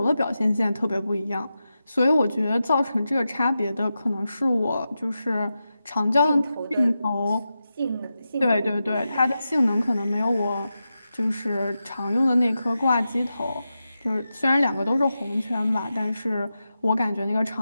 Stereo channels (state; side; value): inverted; both; correlation -0.90